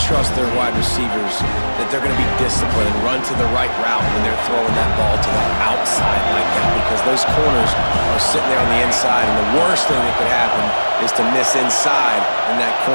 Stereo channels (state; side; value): inverted; both; correlation -1.00